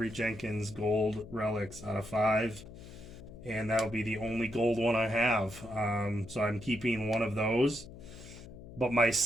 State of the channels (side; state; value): left; noise; hum, 15 dB below the sound